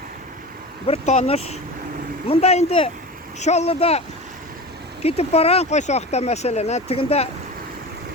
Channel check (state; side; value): normal; both; correlation 0.30